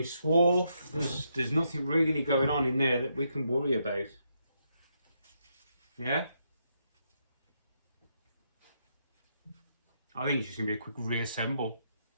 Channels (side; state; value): both; inverted; correlation -0.78